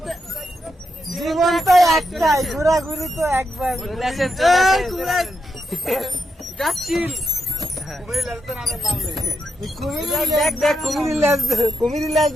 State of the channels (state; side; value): normal; both; correlation 0.85